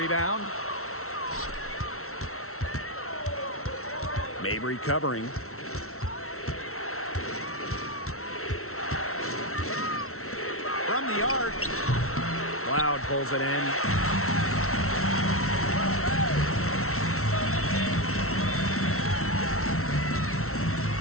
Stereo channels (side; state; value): right; late; 0.63 ms